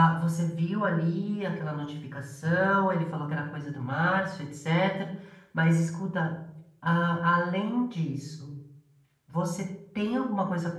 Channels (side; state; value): both; identical; correlation 1.00